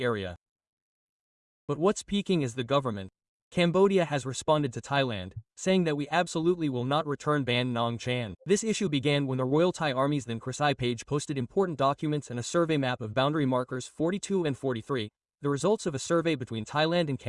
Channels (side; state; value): both; identical; correlation 1.00